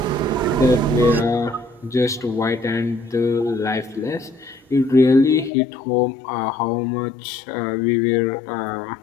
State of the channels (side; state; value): right; drops out; at 5.5 s